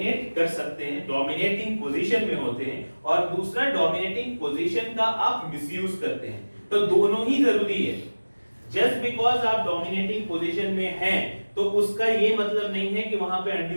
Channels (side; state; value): both; inverted; correlation -1.00